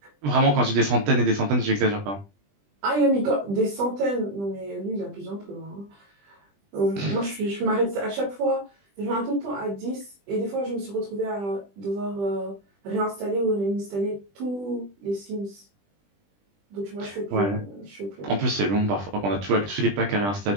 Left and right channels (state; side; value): late; left; 20 ms